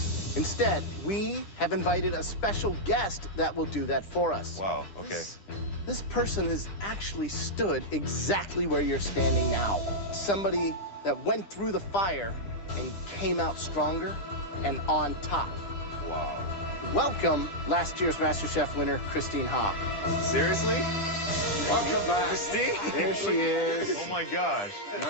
Instead, we have invited a special guest that will do that for us. Wow, okay. This person has actually stood exactly where you're standing now. Somebody that went through the fire and came out stronger and on top. Wow. Welcome, last year's MasterChef winner, Christine Ha. Seriously? Welcome back. Christine? There she is. Oh my gosh.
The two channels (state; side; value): late; right; 10 ms